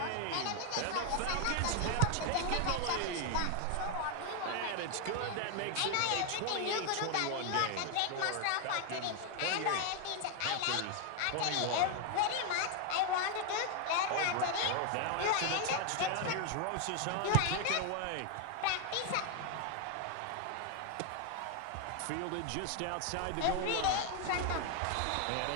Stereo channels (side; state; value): both; different; correlation 0.01